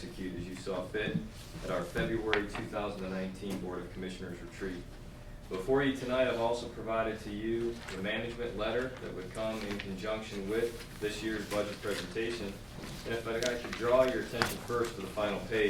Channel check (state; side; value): identical; both; correlation 1.00